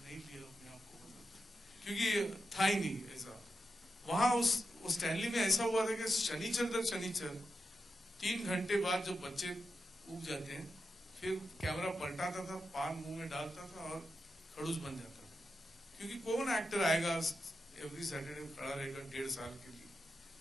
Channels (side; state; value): both; normal; correlation 0.89